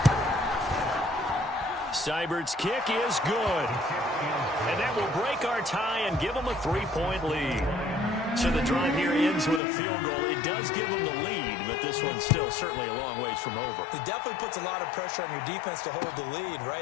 Seibert's kick is good. And that will break our tie and give them a 3-point lead. So the drive here ends with a field goal. It does give them the lead, but this one's still certainly a long ways from over. It definitely puts a lot of pressure on your defense to hold the lead,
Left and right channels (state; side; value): drops out; right; at 9.6 s